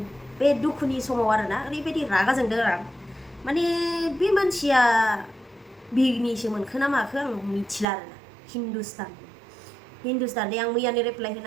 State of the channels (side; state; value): left; drops out; at 7.9 s